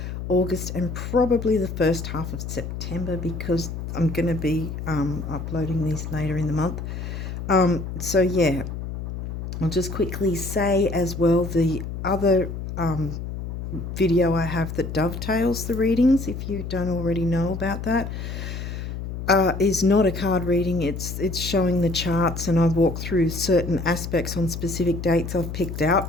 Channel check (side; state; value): left; noise; hum, 6 dB below the sound